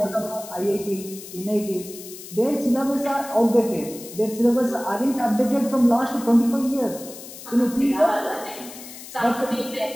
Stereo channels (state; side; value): noise; left; hiss, 14 dB below the sound